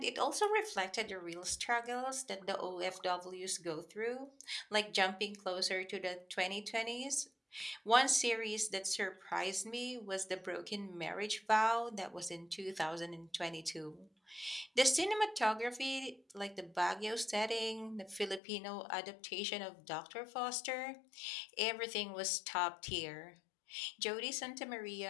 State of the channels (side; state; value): right; drops out; at 18.4 s